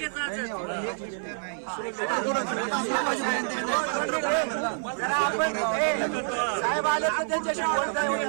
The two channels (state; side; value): silent; left; 57 dB below the other